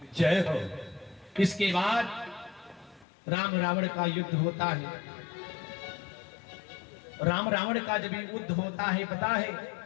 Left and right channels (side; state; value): right; drops out; at 3.1 s